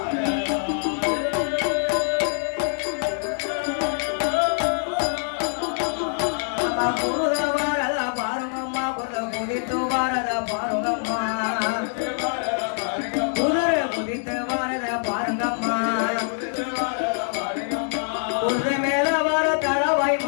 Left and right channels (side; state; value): right; silent; 62 dB below the other